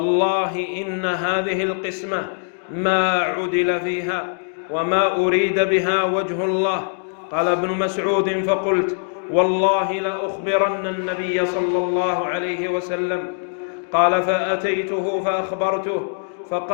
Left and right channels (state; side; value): silent; right; digital silence